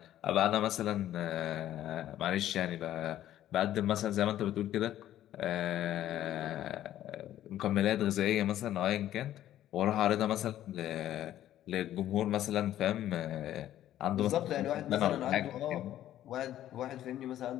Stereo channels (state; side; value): quieter; right; 12.5 dB